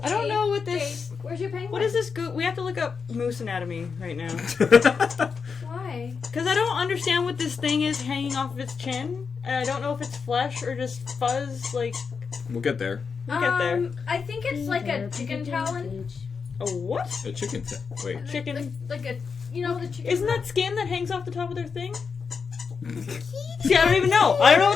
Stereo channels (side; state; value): right; quieter; 5.6 dB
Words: I don't know what this. Jade, where's your penguin? What is this? We have to look up moose anatomy right now. Why? Because I don't understand what this thing is hanging off of its chin. And I don't know if it's flesh or just fuzz. Like, We'll get there. we'll get there. I think it's like a chicken talon. A what? A chicken. Wait. Chicken. Like a, the chicken. Isn't that skin that hangs off the top of their thing? See, I don't even know. I don't know